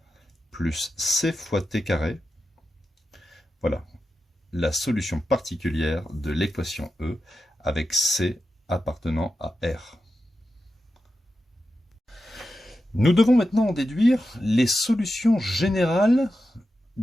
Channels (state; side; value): normal; both; correlation 0.90